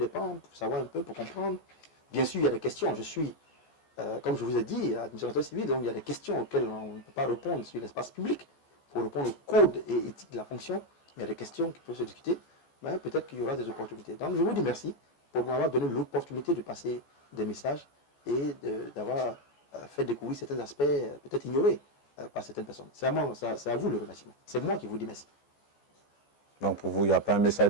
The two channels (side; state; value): right; late; 14 ms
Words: pans pour savoir un peu, pour comprendre. Bien sûr, il y a des questions. Je suis, comme je vous ai dit, administrateur civil, donc il y a des questions auxquelles on ne peut pas répondre sur l'espace public. Pour répondre au code et éthique de la fonction, il y a des questions qui peuvent se discuter. Mais peut-être qu'il y aura des opportunités. Donc je vous dis merci pour m'avoir donné l'opportunité de passer des messages et d'avoir fait découvrir certains aspects peut-être ignorés par certaines personnes. C'est à vous le remerciement. C'est moi qui vous dis merci. Donc pour vous, il n'y a pas un message